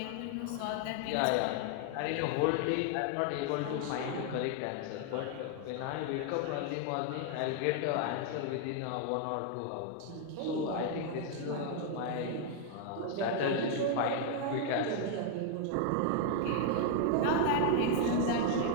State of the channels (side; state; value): both; different; correlation 0.00